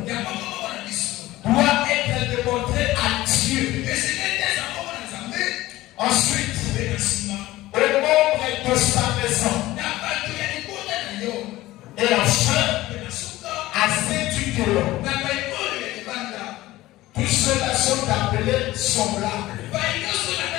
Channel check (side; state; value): right; quieter; 17.2 dB